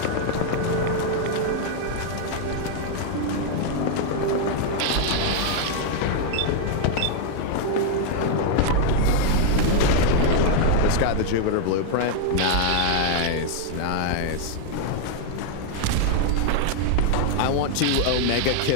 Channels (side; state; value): both; different; correlation 0.00